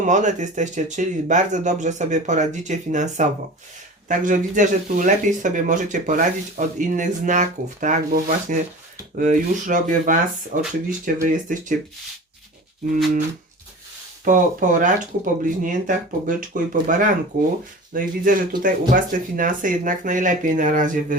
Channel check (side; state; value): both; normal; correlation 0.36